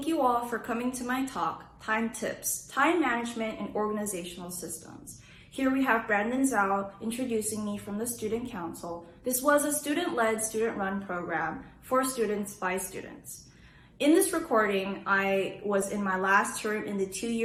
you all for coming to my talk, Time Tips, Time Management and Organizational Systems. Here we have Brandon Zhao introducing me from the Student Council. This was a student-led, student-run program for students by students. In this recording, I was in my last term in the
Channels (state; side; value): identical; both; correlation 1.00